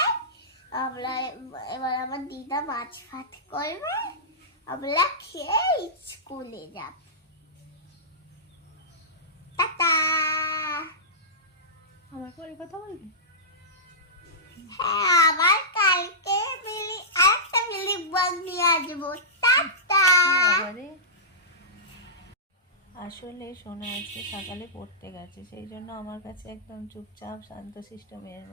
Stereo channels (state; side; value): normal; both; correlation -0.17